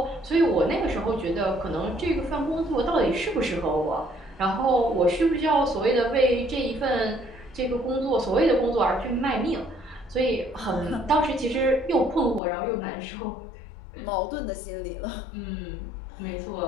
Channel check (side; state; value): right; drops out; at 12.4 s